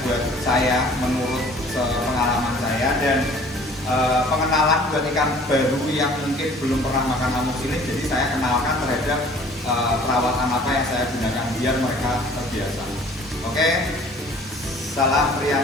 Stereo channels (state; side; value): normal; both; correlation 0.51